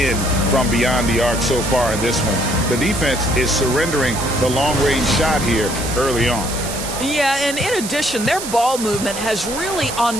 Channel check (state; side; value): noise; right; hiss, 8 dB below the sound